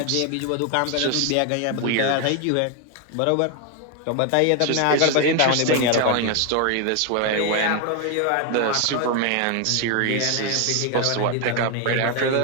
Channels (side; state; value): both; different; correlation 0.01